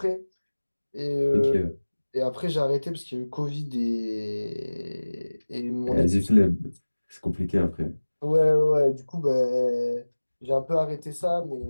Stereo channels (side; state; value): both; inverted; correlation -1.00